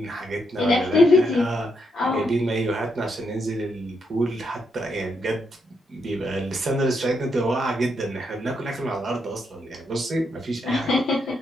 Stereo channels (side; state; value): both; normal; correlation 0.79